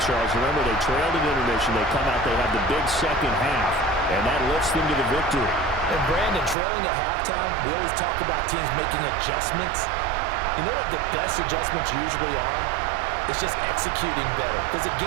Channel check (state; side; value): drops out; left; at 6.6 s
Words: Remember, they trailed at intermission. They come out, they have the big second half, and that lifts them to the victory. And Brandon, trailing at halftime, we always talk about teams making adjustments. You know what the best adjustments usually are? It's just executing better. Because the